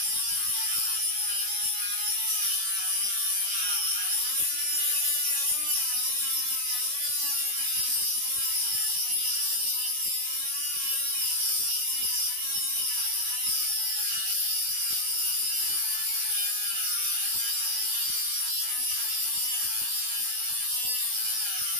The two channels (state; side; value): late; left; 20 ms